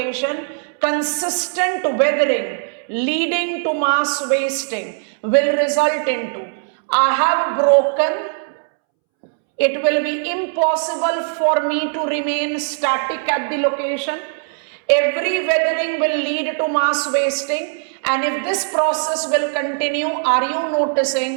consistent weathering leading to mass wasting will result into, I have broken, it will be impossible for me to remain static at the location. Every weathering will lead to mass wasting, and if this process will continue, are you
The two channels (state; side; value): silent; left; 66 dB below the other